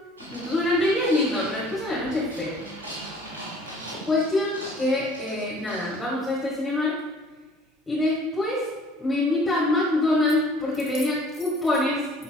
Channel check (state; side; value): normal; both; correlation 0.52